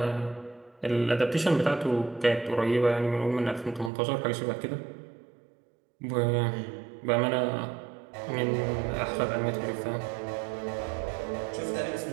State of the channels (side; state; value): left; drops out; at 3.9 s